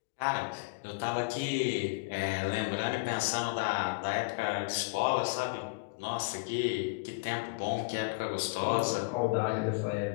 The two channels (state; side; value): quieter; right; 27.9 dB